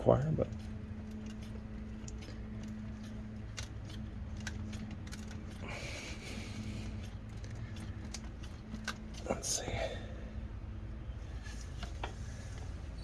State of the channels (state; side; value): identical; both; correlation 1.00